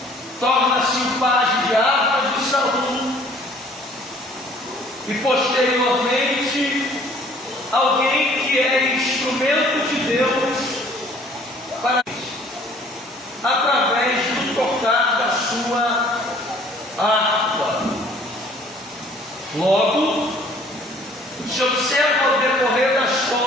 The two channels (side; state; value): both; normal; correlation 0.55